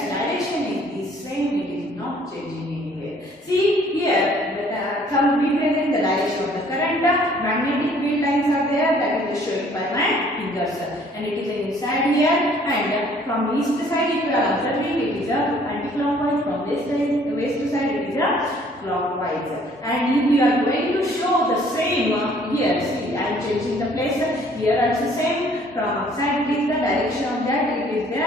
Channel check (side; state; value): both; normal; correlation 0.59